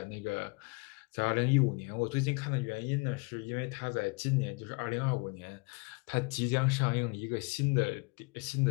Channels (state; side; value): quieter; right; 30.0 dB